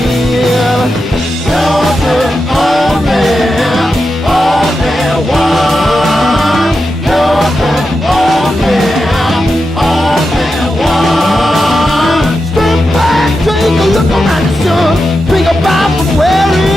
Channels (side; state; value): both; normal; correlation 0.89